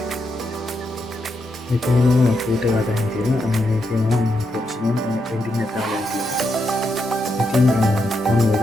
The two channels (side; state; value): both; normal; correlation 0.82